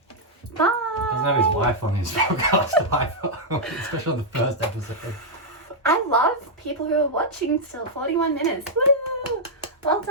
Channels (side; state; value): both; normal; correlation -0.05